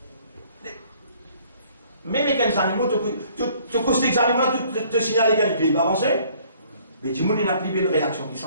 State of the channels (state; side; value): inverted; both; correlation -0.59